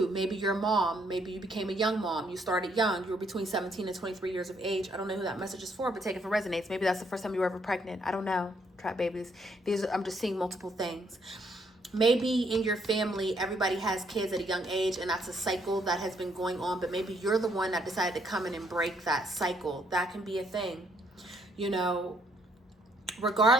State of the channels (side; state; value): both; normal; correlation 0.70